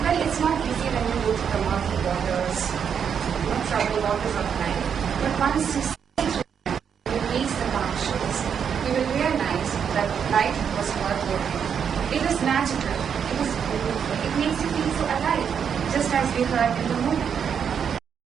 Well, it's not easy when you go to the murky waters, troubled waters of life. But once you see through them, you reach the calm shores, you will realize that life was worth living. It is magical. It is beautiful. It makes you feel so alive, just as we heard in the movie.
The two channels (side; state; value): left; quieter; 7.5 dB